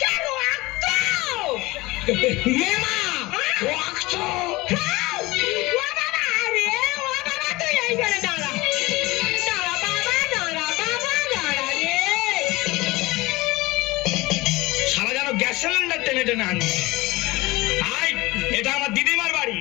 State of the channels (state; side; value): quieter; right; 21.2 dB